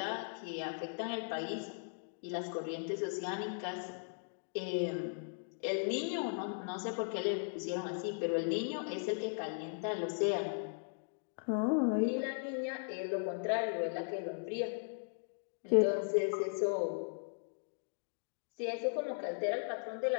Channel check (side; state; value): right; silent; digital silence